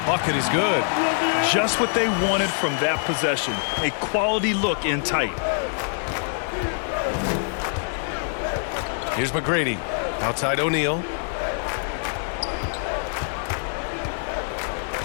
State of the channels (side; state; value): right; silent; digital silence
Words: bucket is good. Just what they wanted from that possession. A quality look in tight. Here's McGrady. Outside O'Neal.